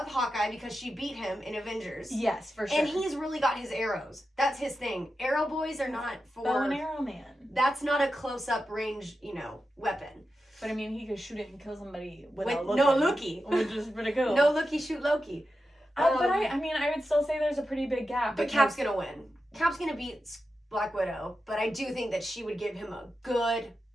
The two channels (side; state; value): both; normal; correlation 0.90